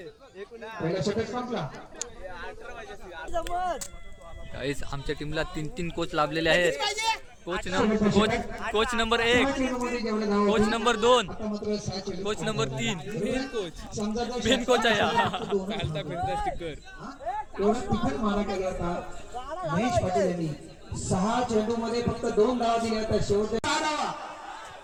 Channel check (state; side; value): identical; both; correlation 1.00